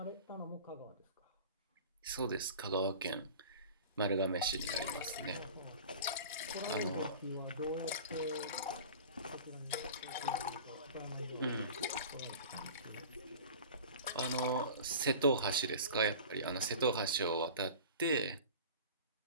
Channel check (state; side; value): inverted; both; correlation -0.38